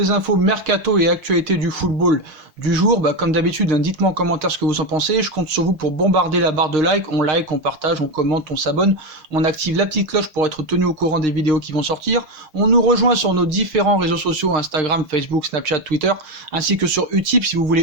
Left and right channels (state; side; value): late; left; 6.5 ms